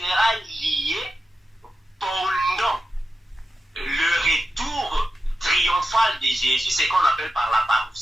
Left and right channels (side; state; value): both; normal; correlation 0.90